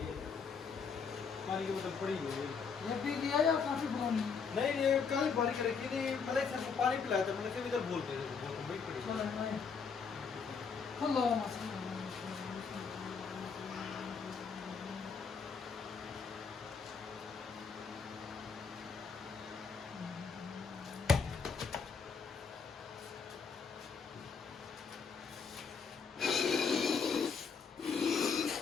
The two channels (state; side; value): quieter; right; 5.7 dB